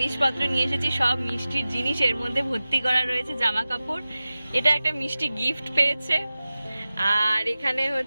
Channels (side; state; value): both; inverted; correlation -0.96